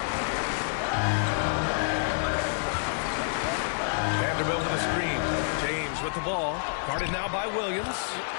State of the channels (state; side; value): silent; right; 59 dB below the other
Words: Vanderbilt with a screen. James with the ball. Guarded now by Williams.